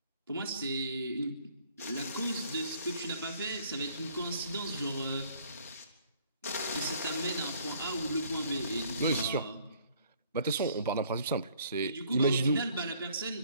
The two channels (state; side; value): inverted; both; correlation -0.60